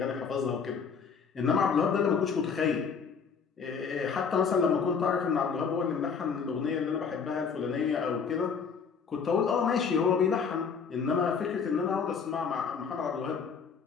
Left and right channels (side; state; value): right; quieter; 6.0 dB